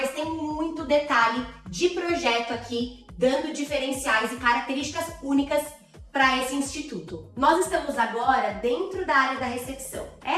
tem muito detalhe de projeto aqui, dando diferenciais e características únicas para esse instituto. Nós estamos agora dentro da área da recepção.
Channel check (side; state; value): both; identical; correlation 1.00